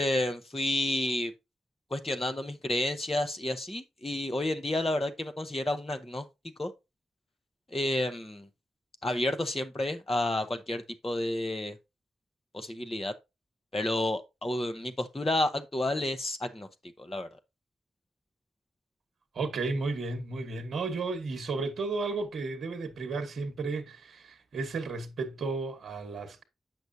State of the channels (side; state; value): both; normal; correlation 0.82